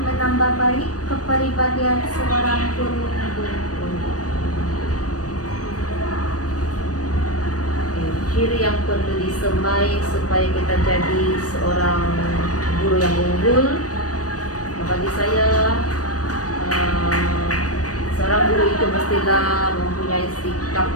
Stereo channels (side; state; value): right; late; 0.68 ms